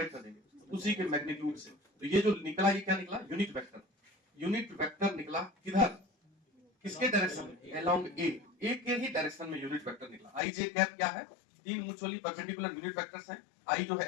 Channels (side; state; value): right; drops out; at 10.4 s